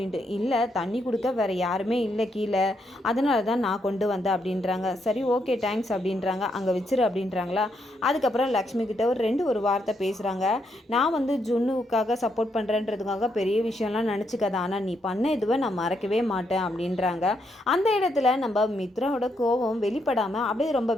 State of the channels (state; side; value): normal; both; correlation 0.78